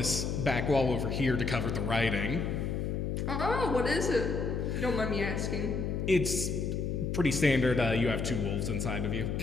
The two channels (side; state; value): left; noise; hum, 1 dB below the sound